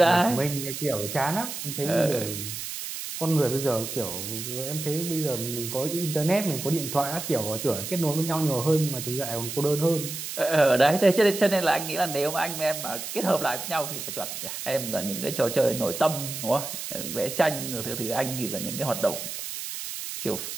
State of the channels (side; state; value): right; noise; hiss, 7 dB below the sound